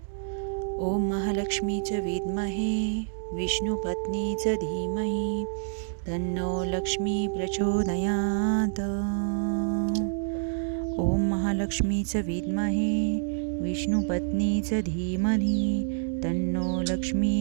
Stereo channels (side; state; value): left; silent; digital silence